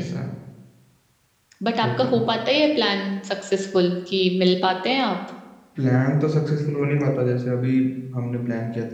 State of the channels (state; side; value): identical; both; correlation 1.00